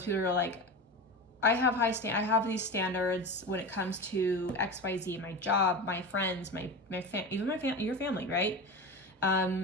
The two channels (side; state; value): both; normal; correlation 0.26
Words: people who are like, I have these standards when it comes to XYZ, my job, my friends, your family, right?